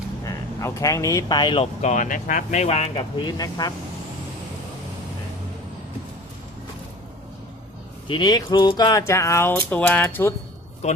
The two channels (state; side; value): normal; both; correlation 0.41